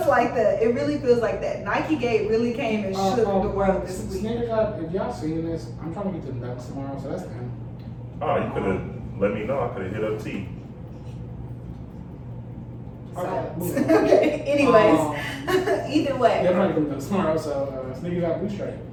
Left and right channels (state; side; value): identical; both; correlation 1.00